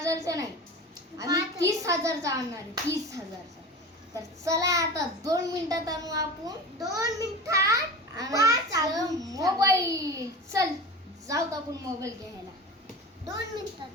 नाही, आम्ही 30,000चा आणणार आहे. 30,000चा. तर चला आता 2 मिनिटात आणू आपण. 2 मिनिटात आणायचं मोबाईल. चल जाऊ आपण मोबाईल घ्यायला. 2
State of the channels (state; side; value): normal; both; correlation 0.31